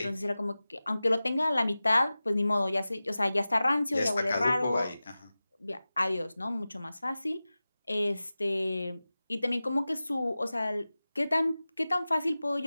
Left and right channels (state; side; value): inverted; both; correlation -0.96